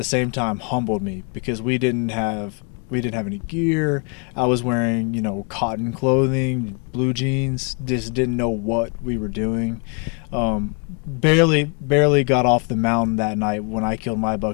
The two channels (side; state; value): right; quieter; 36.2 dB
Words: same time humbled me, because we didn't have any gear. I was wearing, cotton clothing, blue jeans, just didn't know what we were doing. Barely got off the mountain that night when I killed my